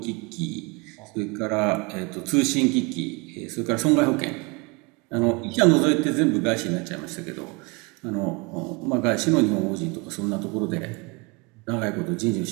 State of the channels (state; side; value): quieter; left; 29.2 dB